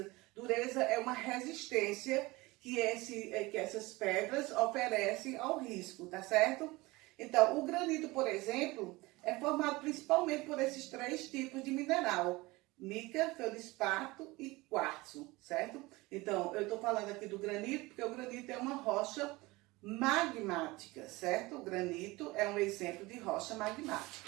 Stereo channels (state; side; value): quieter; left; 21.8 dB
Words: Dureza é uma resistência que essas pedras oferecem ao risco, tá certo? Então, o granito, por exemplo, é formado principalmente por esses três tipos de mineral: mica, feldespato e quartzo, certo? Então, eu estou falando aqui do granito porque o granito é uma rocha magmática, certo? O granito é um exemplo de rocha